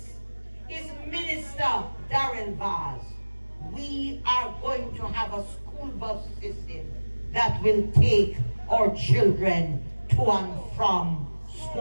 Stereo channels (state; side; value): inverted; both; correlation -1.00